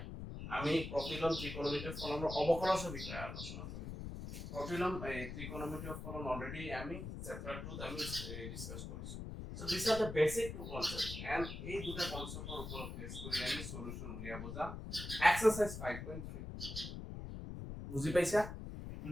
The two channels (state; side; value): noise; left; rumble, 7 dB below the sound